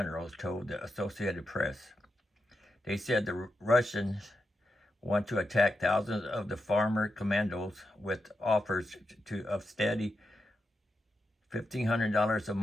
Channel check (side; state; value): both; normal; correlation 0.87